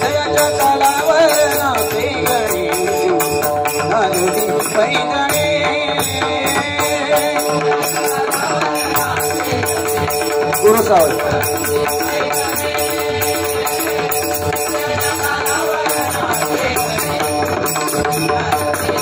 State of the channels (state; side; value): identical; both; correlation 1.00